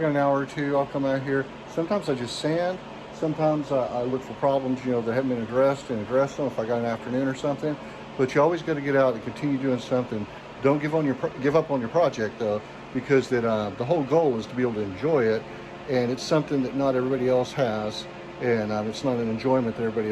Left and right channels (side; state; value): both; identical; correlation 1.00